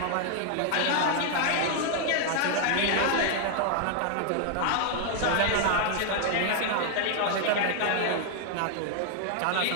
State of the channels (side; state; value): both; different; correlation 0.00